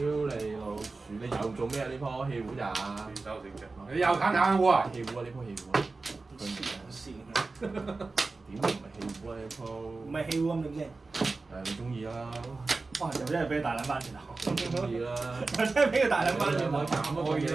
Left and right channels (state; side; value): quieter; left; 3.7 dB